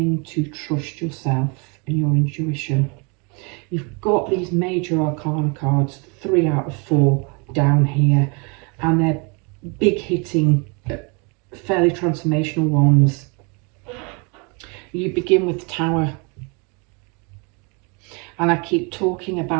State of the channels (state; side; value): quieter; left; 32.3 dB